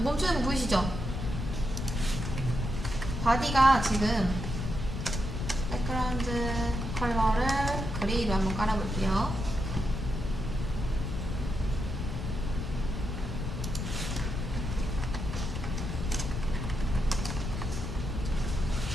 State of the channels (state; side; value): noise; left; rumble, 4 dB below the sound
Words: 멈추는 거 보이시죠? 바디가 지금 백그라운드 컬러를 그레이로 한번 깔아볼게요.